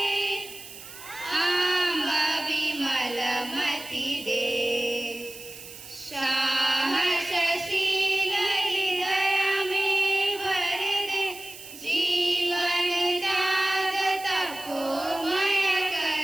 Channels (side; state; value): right; noise; hiss, 15 dB below the sound